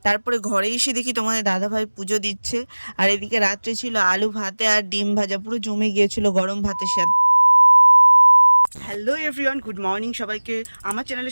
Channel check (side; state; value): both; inverted; correlation -1.00